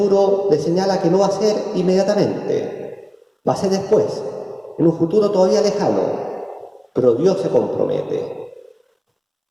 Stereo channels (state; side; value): identical; both; correlation 1.00